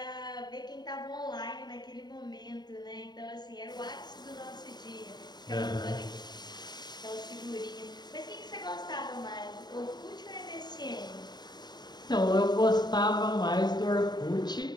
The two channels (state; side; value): late; right; 0.20 ms